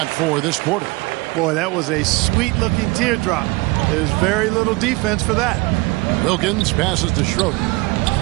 4 this quarter. Boy, that was a sweet-looking teardrop. There's very little defense for that. Wilkins passes to Schroeder.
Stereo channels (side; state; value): left; quieter; 23.9 dB